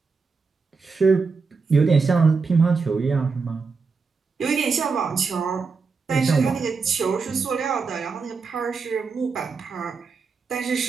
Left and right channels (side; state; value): left; quieter; 4.8 dB